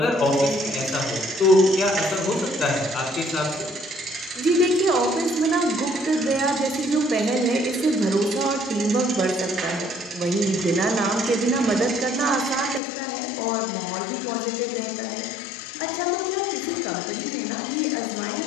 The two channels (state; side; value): drops out; right; at 12.8 s